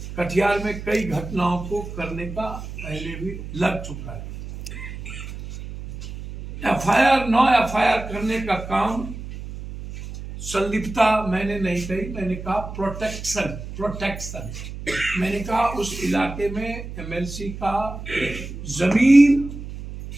कटिहार में कई घटनाओं को करने का पहले भी लग चुका है। एफआईआर 9 एफआईआर करने का काम संलिप्तता मैंने नहीं कही, मैंने कहा प्रोटेक्शन। मैंने कहा उस इलाके में एमएलसी का जमीन,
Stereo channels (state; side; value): noise; right; hum, 10 dB below the sound